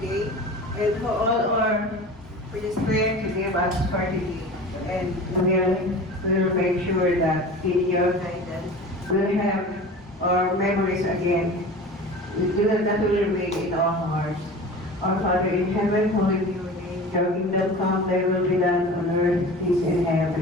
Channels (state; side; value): normal; both; correlation 0.37